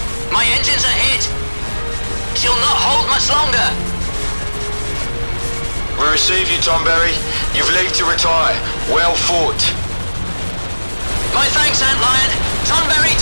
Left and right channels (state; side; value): inverted; both; correlation -1.00